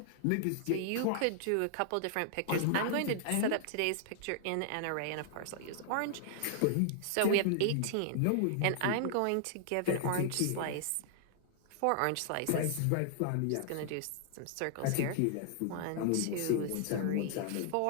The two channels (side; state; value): both; different; correlation -0.01